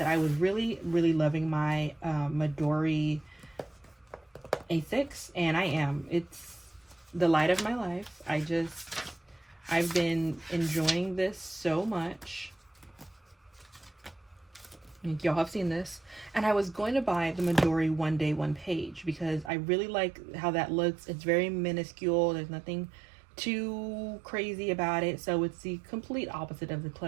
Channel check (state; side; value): drops out; left; at 19.5 s